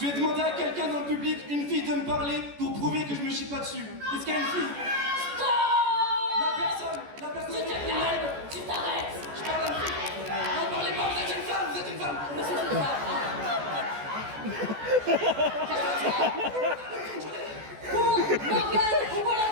vais demander à quelqu'un dans le public, une fille, de me parler pour prouver que je me chie pas dessus. Est-ce qu'il y a une fille? Pour Morgane, on voit la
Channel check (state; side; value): late; left; 14 ms